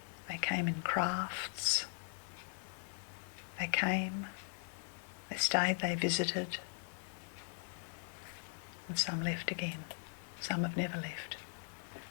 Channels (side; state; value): right; silent; 51 dB below the other